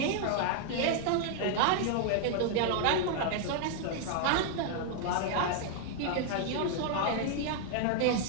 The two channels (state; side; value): different; both; correlation 0.00